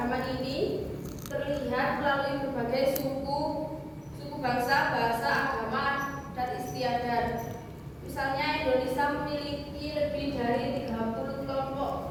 ini terlihat melalui berbagai suku bangsa, bahasa, agama, dan istiadat. Misalnya, Indonesia memiliki lebih dari 300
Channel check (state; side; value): identical; both; correlation 1.00